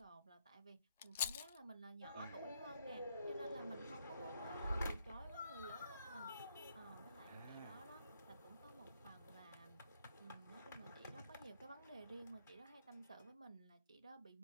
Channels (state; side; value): inverted; both; correlation -0.73